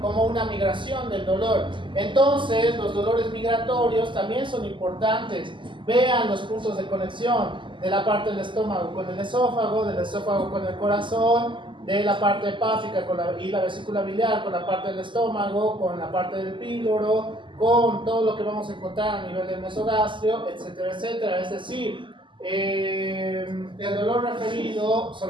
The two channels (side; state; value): left; late; 0.24 ms